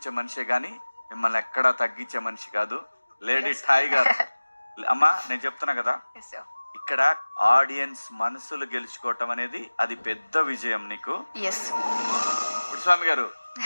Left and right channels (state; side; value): inverted; both; correlation -1.00